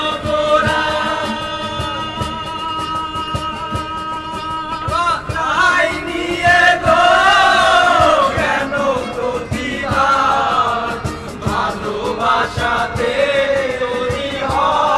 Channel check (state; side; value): identical; both; correlation 1.00